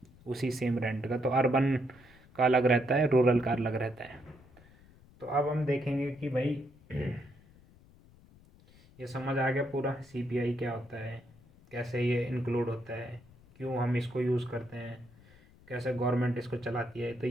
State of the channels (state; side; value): noise; left; rumble, 25 dB below the sound